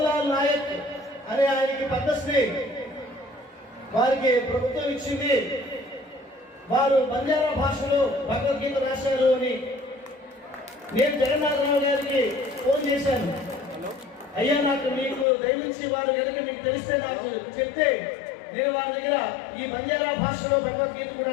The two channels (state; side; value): drops out; right; at 15.2 s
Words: నాయక్ అనే ఆయనకి పద్మశ్రీ వారికి ప్రభుత్వం ఇచ్చింది, వారు బంజారా భాషలో భగవద్గీత రాశారు అని. నేను జగన్నాథరావు గారికి ఫోన్ చేశాను, అయ్యా నాకు మీకు దయవించి వారు కనుక మీకు తెలిస్తే నాకు చెప్తే నేను వారి దగ్గర ఈ బంజారా భాషలో భగవద్గీత